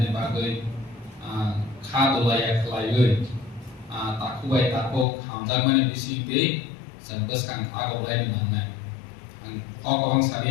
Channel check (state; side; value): drops out; right; at 5.1 s